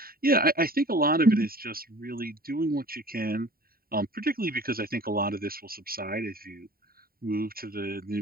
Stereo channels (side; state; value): left; late; 0.43 ms